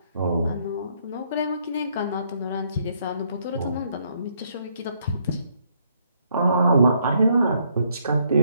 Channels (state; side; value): inverted; both; correlation -0.71